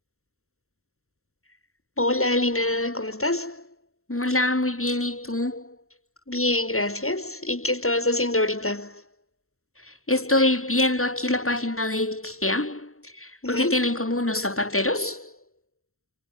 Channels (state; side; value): late; right; 0.63 ms